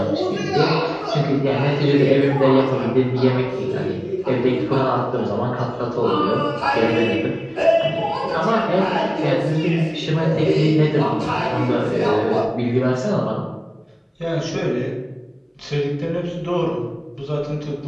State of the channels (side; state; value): both; identical; correlation 1.00